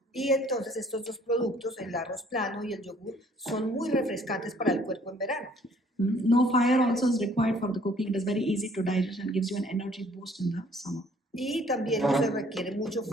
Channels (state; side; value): normal; both; correlation 0.59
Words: Y entonces estos dos productos, el arroz plano y el yogur, son muy refrescantes para el cuerpo en verano. No fire also is required for the cooking. It is very easy to digest and gives you an energy boost in the summer. Y también no se requiere mucho